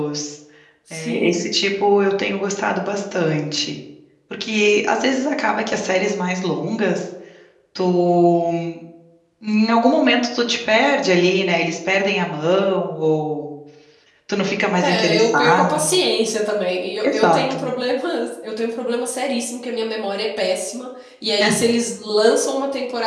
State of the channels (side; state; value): both; identical; correlation 1.00